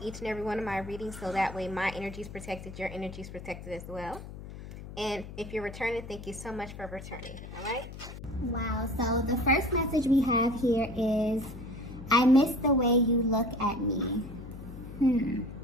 each and every one of my readings, so that way my energy is protected, your energy is protected as well. And if you're returning, thank you so much for returning. All right? Wow. So the first message we have here is, I miss the way you look at me.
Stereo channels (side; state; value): left; noise; hum, 12 dB below the sound